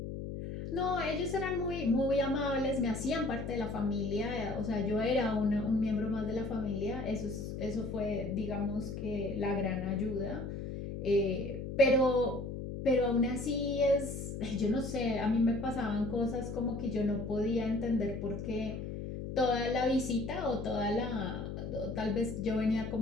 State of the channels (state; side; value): noise; left; hum, 6 dB below the sound